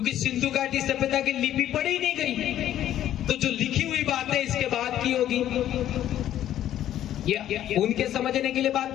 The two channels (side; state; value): right; quieter; 11.8 dB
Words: सिंधु घाटी सभ्यता की लिपि पढ़ी नहीं गई, तो जो लिखी हुई बात है इसके बाद की होगी। ये उनके समझने के लिए बात